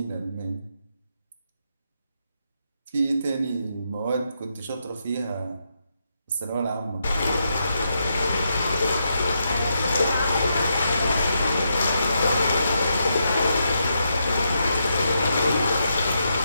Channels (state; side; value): inverted; both; correlation -0.82